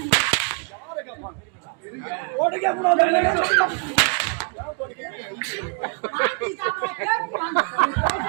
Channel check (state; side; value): quieter; left; 38.0 dB